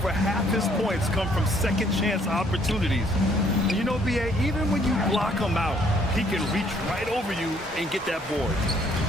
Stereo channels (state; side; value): normal; both; correlation 0.64